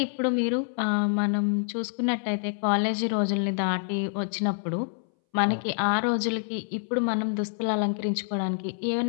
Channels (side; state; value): right; silent; 60 dB below the other